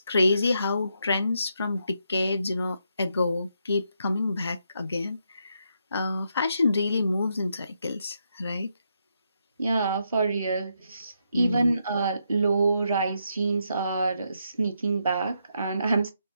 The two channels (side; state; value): both; inverted; correlation -0.79